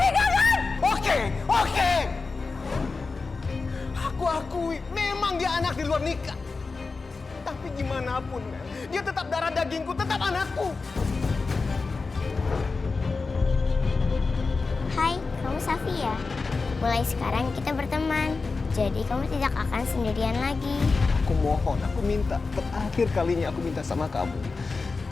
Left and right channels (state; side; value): quieter; right; 4.2 dB